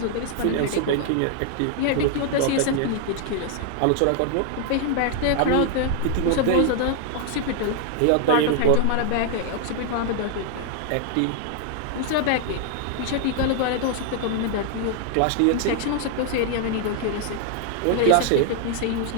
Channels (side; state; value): both; different; correlation 0.00